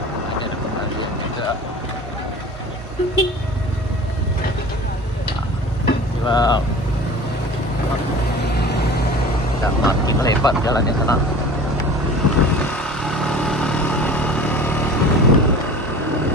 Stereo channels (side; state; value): both; normal; correlation 0.40